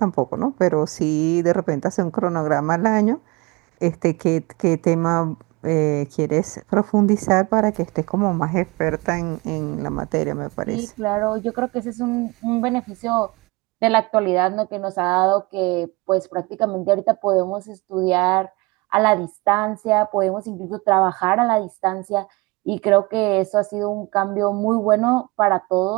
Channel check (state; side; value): quieter; left; 25.2 dB